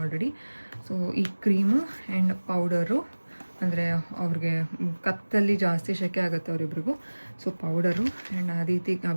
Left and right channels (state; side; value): inverted; both; correlation -1.00